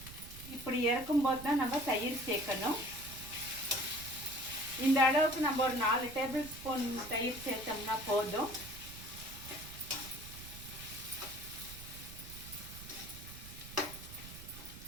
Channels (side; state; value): right; noise; rumble, 14 dB below the sound